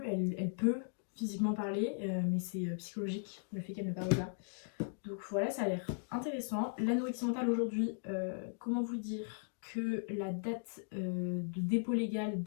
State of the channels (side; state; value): right; silent; digital silence